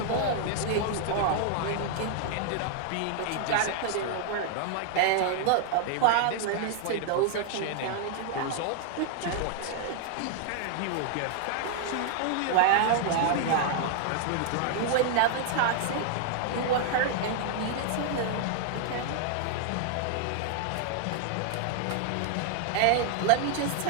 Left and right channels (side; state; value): both; different; correlation 0.00